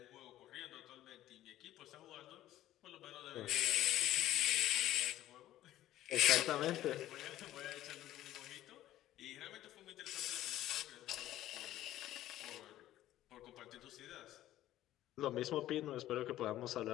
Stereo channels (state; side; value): quieter; right; 13.9 dB